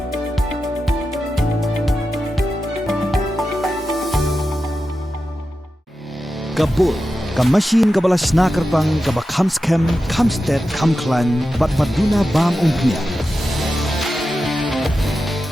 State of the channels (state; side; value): normal; both; correlation 0.91